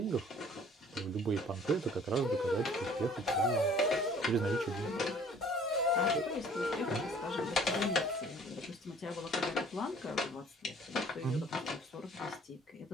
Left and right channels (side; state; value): both; normal; correlation 0.54